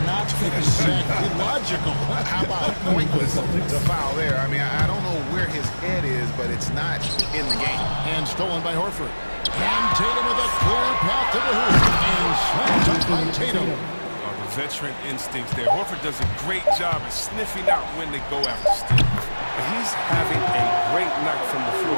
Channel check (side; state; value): both; inverted; correlation -1.00